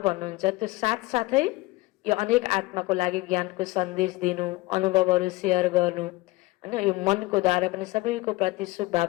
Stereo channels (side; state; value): right; quieter; 21.0 dB